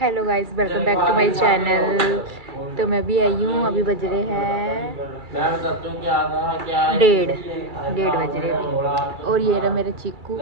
Hello guys, welcome back to my channel. तो मैं भी आई हूँ। अभी बज रहे हैं 1:30 बज रहे अभी। और ये रहा मेरा चीकू।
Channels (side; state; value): left; late; 2.3 ms